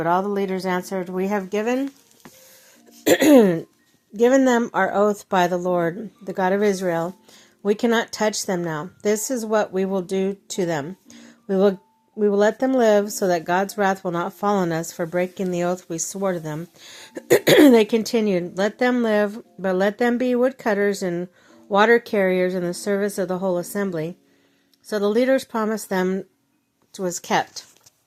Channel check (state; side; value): identical; both; correlation 1.00